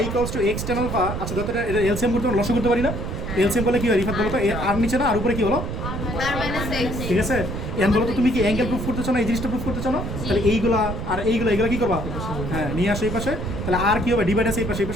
equals to x tan alpha, আচ্ছা যত এটা এলসিএম করতে লসও করতে পারি না, এলসিএম করলে কি হয় রিফাত বলো তো, আর নিচে না আর উপরে কি হলো, ঠিক আছে? এখন বলো তো তুমি কি অ্যাঙ্গেল প্রুফ করতে চাও না এই জিনিসটা প্রুফ করতে চাও না, তাহলে এইগুলা আর এইগুলা কি করবা, হ্যাঁ নিয়ে আসো এই পাশে, তাহলে আর কি হবে ডিভাইড আছে এই পাশে, এই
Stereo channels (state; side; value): noise; right; rumble, 5 dB below the sound